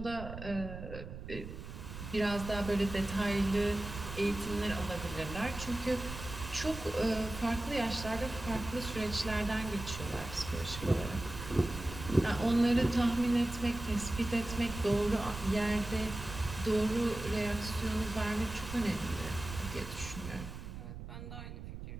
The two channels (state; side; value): noise; right; rumble, 10 dB below the sound